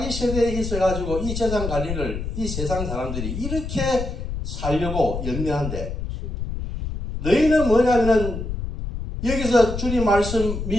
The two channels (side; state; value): left; noise; rumble, 5 dB below the sound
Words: 세대에 있어가지고 이 재산 관리를 이 세상 사람들이 이렇게 살려고 연명한데, 너희는 뭐냐면은 여기서 주님 말씀